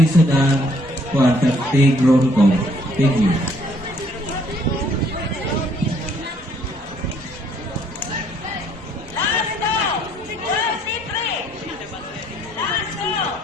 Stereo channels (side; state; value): both; normal; correlation 0.65